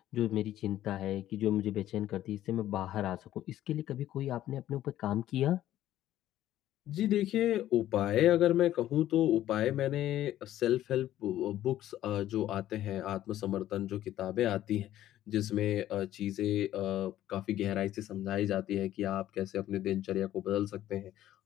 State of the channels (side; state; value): right; quieter; 13.1 dB